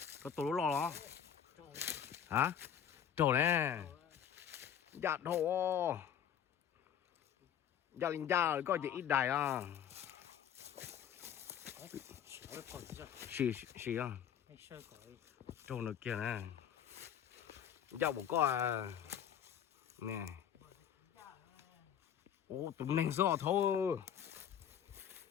có tổ lo đó hả trổ nè dạ thổ dạ linh gia có gì ít đài à Nó còn gì? xì à Hay sơ cõi. trổ nữa kia nè dạ bố có à nè ô tụi mình rõ thôi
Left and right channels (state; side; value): quieter; right; 9.0 dB